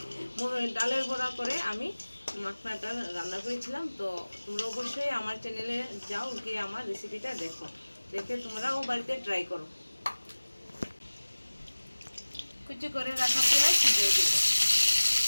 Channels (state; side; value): inverted; both; correlation -1.00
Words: ডালের বড়া করে আমি মাখনাটা রান্না করেছিলাম। তো তোমরা অবশ্যই আমার চ্যানেলে যাও, গিয়ে আমার রেসিপিটা দেখো, দেখে তোমরাও বাড়িতে ট্রাই করো। কুচি করে রাখা পেঁয়াজ দিয়ে দেব।